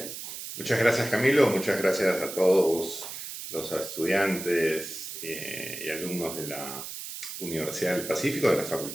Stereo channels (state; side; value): noise; right; hiss, 9 dB below the sound